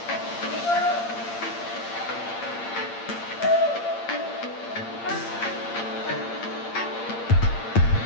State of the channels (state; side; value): late; right; 8.7 ms